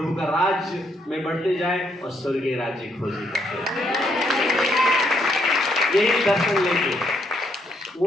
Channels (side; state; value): both; normal; correlation 0.74